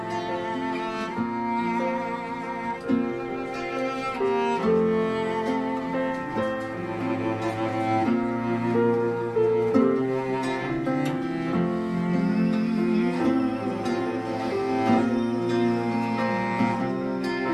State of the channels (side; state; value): both; identical; correlation 1.00